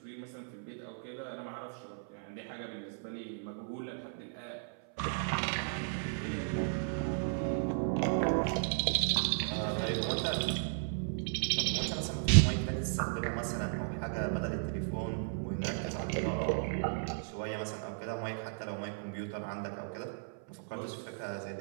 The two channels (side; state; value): left; silent; 54 dB below the other